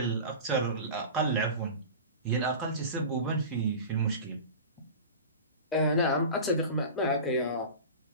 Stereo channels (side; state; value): both; inverted; correlation -0.32